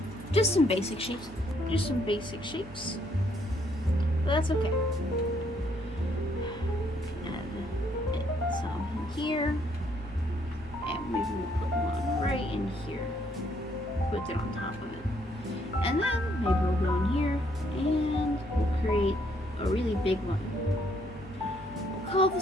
Just some basic shapes. Just some basic shapes. But that's okay. Add some in here. And maybe we'll put one right in here. Put it on top of it. And then maybe we'll go in here and we'll create big one. We'll call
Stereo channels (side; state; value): both; normal; correlation 0.69